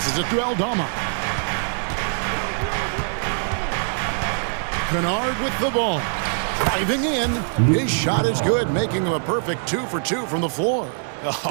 it to Aldama. Kennard with the ball. Driving in. His shot is good, making him a perfect 2 for 2 from the floor.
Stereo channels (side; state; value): left; silent; 64 dB below the other